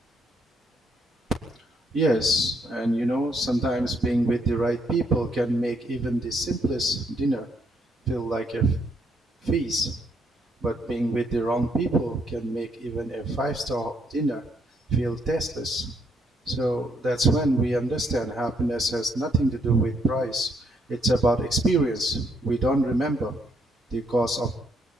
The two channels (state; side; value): normal; both; correlation 0.72